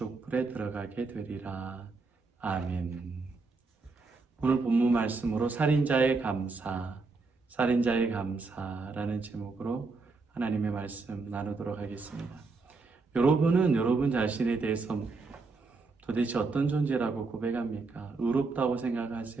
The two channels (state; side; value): quieter; left; 4.0 dB